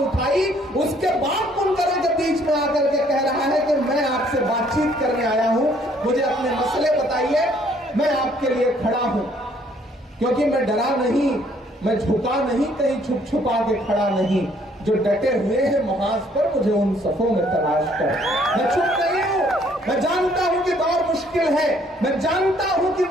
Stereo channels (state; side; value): normal; both; correlation 0.63